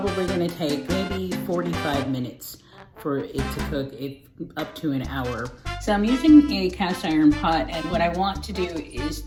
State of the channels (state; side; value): identical; both; correlation 1.00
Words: going to take maybe 45 minutes for it to cook it up to an hour. So I'm using a cast iron pot, and what I want to do is